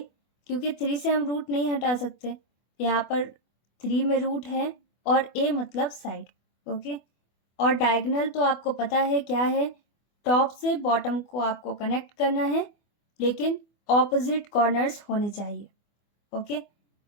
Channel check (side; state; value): right; late; 24 ms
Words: क्योंकि 3 से हम रूट नहीं हटा सकते, यहाँ पर 3 में रूट है और a मतलब साइड। ओके, और डायगोनल तो आपको पता है क्या है, टॉप से बॉटम को आपको कनेक्ट करना है, लेकिन ऑपोजिट कॉर्नर्स होने चाहिए। ओके,